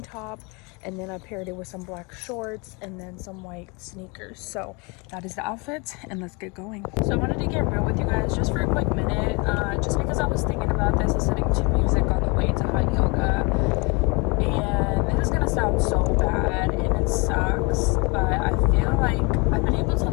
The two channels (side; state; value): right; quieter; 29.6 dB